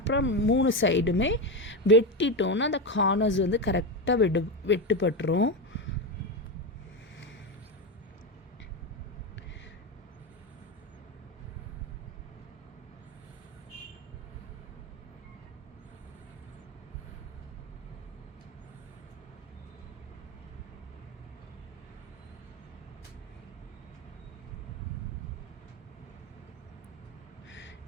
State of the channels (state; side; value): normal; both; correlation 0.15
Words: 3 சைடுமே வெட்டிட்டோன்னா அந்த கார்னர்ஸ் வந்து கரெக்டாக வெட்டுப்பட்டுரும்.